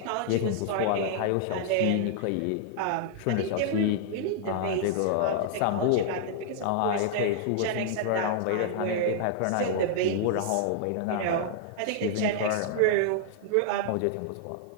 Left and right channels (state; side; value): different; both; correlation -0.01